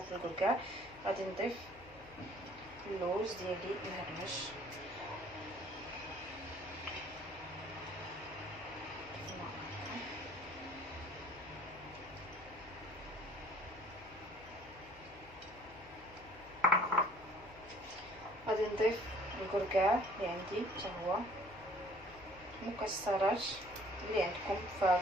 في الكركاع. غادي نضيف اللوز ديالي مهرمش، غادي نضيف الكركاع اللي عندي حتى هو، مكسرات اللي عندكم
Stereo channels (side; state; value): left; noise; hum, 21 dB below the sound